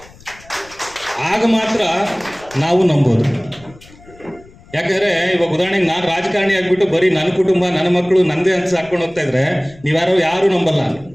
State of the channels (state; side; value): noise; left; rumble, 24 dB below the sound